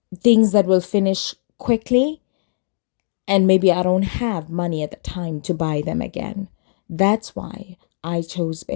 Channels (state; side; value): silent; right; digital silence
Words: things that will finish quickly, and maybe I don't have money at the time to buy them again. That's why I chose